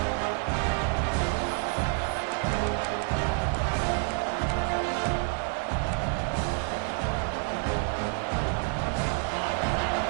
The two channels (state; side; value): quieter; left; 38.2 dB